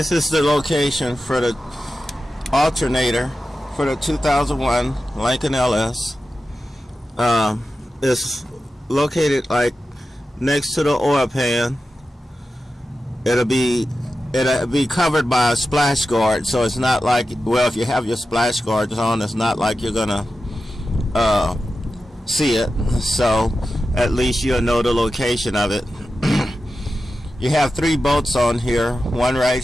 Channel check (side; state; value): both; normal; correlation 0.92